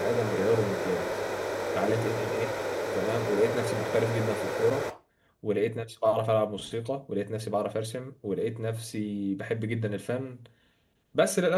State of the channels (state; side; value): identical; both; correlation 1.00